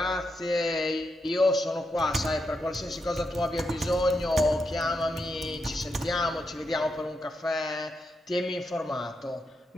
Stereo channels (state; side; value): normal; both; correlation 0.84